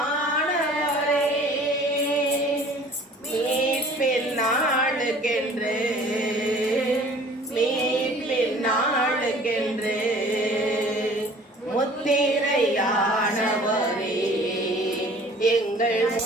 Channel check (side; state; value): both; normal; correlation 0.50